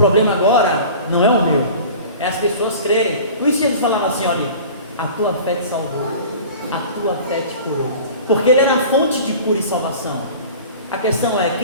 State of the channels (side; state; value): both; inverted; correlation -0.41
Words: agora não é o meu, é as pessoas crerem. Por isso Jesus falava assim: olha, a tua fé te salvou, a tua fé te curou. Porque ele era a fonte de cura e salvação. A questão é: